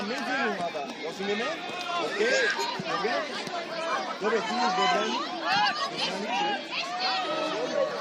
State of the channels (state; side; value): identical; both; correlation 1.00